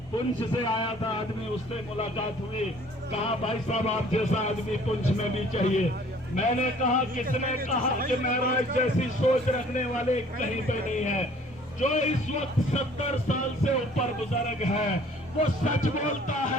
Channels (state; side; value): normal; both; correlation 0.54